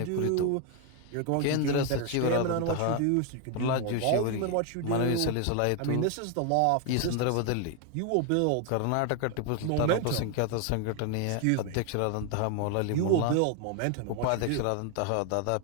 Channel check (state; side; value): different; both; correlation 0.01